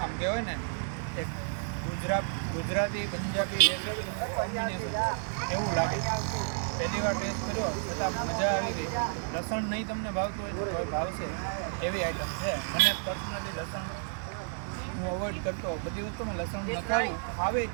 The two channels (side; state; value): left; silent; 57 dB below the other